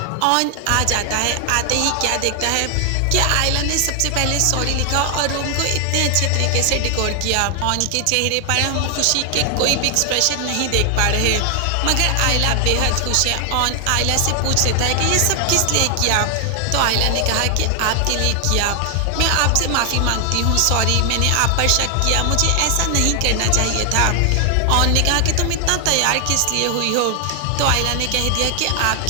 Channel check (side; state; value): both; different; correlation 0.00